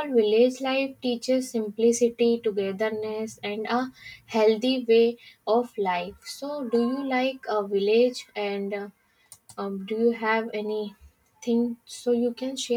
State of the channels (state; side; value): identical; both; correlation 1.00